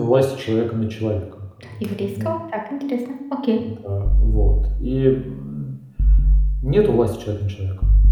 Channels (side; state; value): both; identical; correlation 1.00